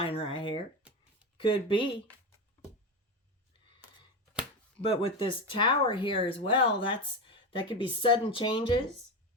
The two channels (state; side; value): normal; both; correlation 0.18